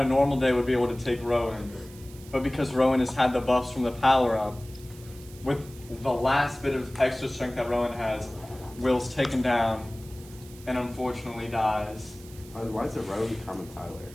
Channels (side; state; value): right; noise; hiss, 21 dB below the sound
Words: normal day would be able to take Rowan. But because Rowan has had the buffs from the power up, with the last bit of extra strength that Rowan has, Will's taken down and unfortunately dies. Why is it Rowan, Carmen, Tyler?